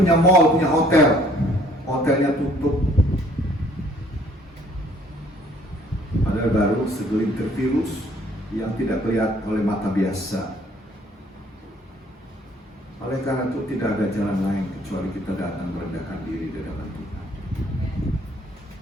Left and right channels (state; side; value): normal; both; correlation 0.60